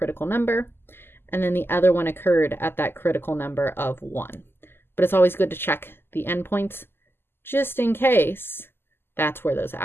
number, and then the other one occurred at that critical number of 1. But it's always good to check the endpoints just in case that's where those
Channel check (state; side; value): late; right; 0.11 ms